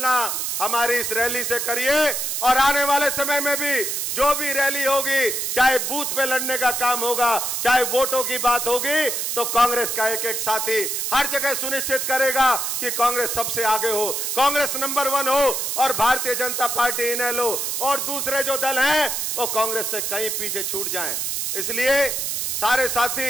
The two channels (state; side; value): noise; right; hiss, 1 dB below the sound